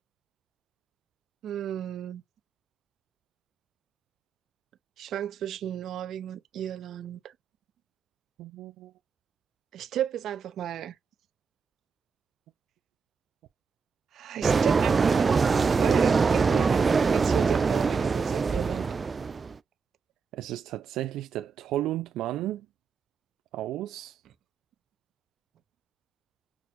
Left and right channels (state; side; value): quieter; left; 5.4 dB